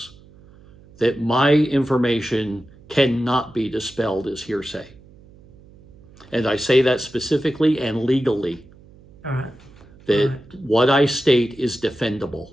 that my information cannot be dispelled as hearsay. And I say that specifically and legally. All right. That All right. what I state is defendable.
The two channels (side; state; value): right; noise; hum, 24 dB below the sound